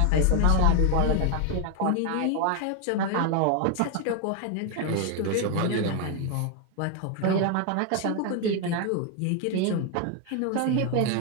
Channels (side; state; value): both; different; correlation 0.01